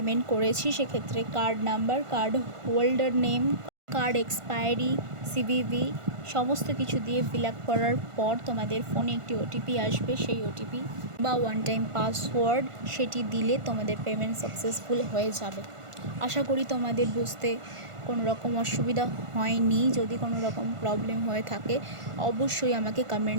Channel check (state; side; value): late; left; 1.5 ms